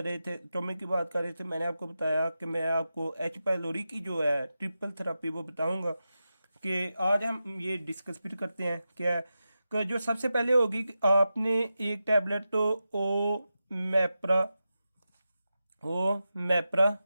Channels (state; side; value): inverted; both; correlation -0.91